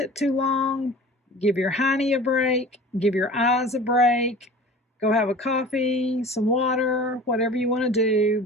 too long. Give your honey a break. Give your eyes a break. Go have a coffee, some water, whatever you want to do,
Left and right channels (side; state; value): both; normal; correlation 0.40